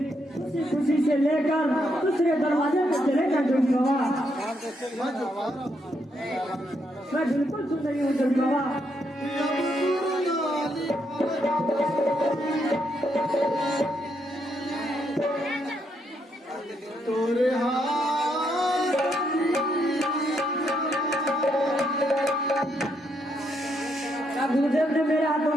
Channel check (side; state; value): both; normal; correlation 0.77